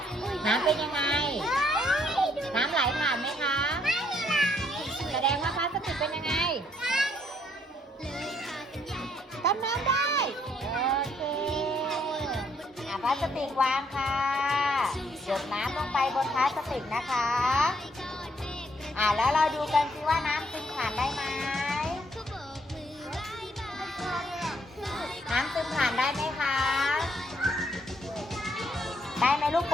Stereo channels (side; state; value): both; normal; correlation 0.70